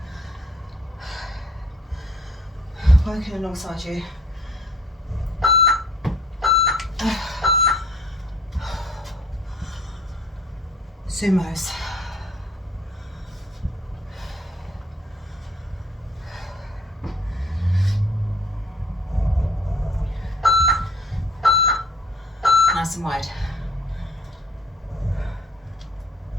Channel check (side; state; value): both; normal; correlation 0.57